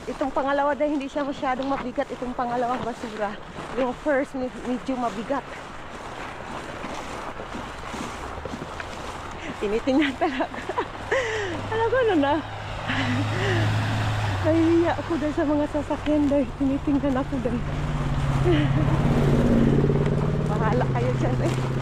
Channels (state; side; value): identical; both; correlation 1.00